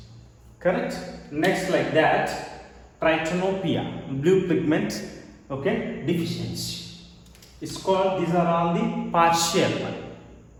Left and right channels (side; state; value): both; identical; correlation 1.00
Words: Correct? Next, like that, trichotillomania, blue pigment, okay, deficiency. It's called, these are all the partial